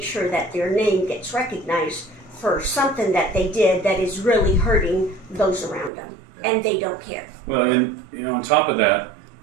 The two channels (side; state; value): left; drops out; at 5.9 s